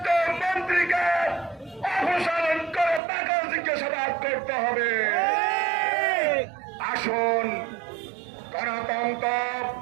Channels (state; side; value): drops out; left; at 3.0 s